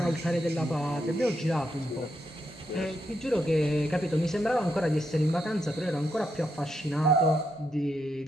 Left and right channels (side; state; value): both; normal; correlation 0.81